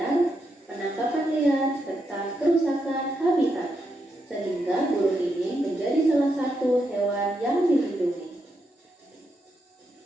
penangkapan liar, serta kerusakan habitat, sehingga burung ini menjadi salah satu hewan yang dilindungi.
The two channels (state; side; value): normal; both; correlation 0.82